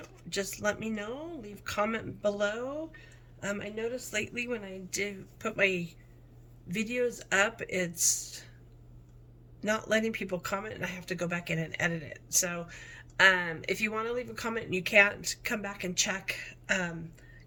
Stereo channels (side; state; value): both; identical; correlation 1.00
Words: just let me know. Leave comment below. I noticed lately when I did put my videos up, it's not letting people comment, and I have to go back in and edit it. So if you want to leave a comment and you can't, come back and check,